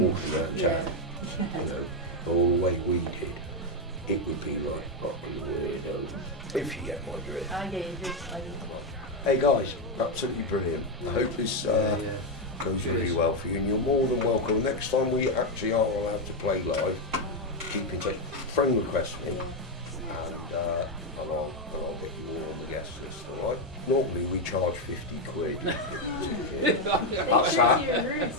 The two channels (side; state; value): both; normal; correlation 0.05